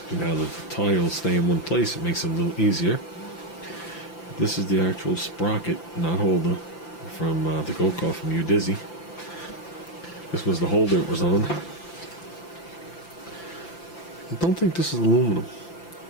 Now that the tiles stay in one place, it makes it a little easier. This is the actual sprocket, not holder, from the go-kart from Udizzy. This was the holder it was on. I don't think this is aluminum.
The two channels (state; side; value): late; right; 5.9 ms